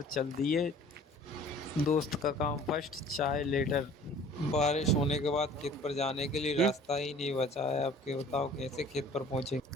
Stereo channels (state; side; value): normal; both; correlation 0.49